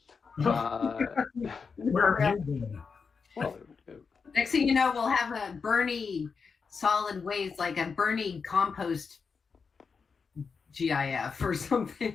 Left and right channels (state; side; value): quieter; right; 5.3 dB